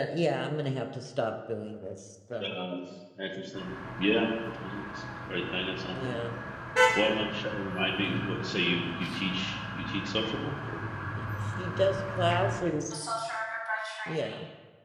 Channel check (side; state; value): both; identical; correlation 1.00